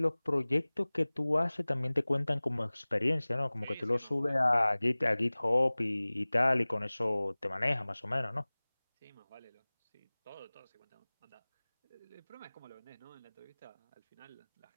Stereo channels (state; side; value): inverted; both; correlation -1.00